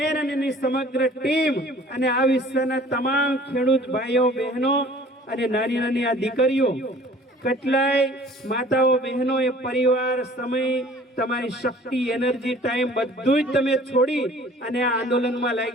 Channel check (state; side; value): normal; both; correlation 0.50